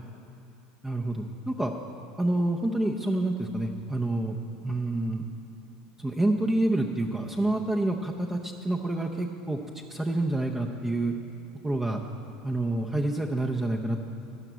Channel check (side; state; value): both; normal; correlation 0.87